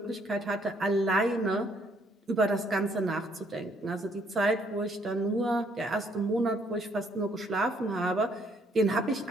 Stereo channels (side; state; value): both; normal; correlation 0.68